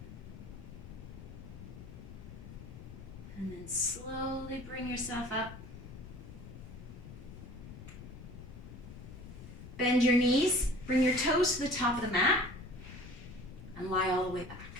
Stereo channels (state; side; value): noise; left; rumble, 13 dB below the sound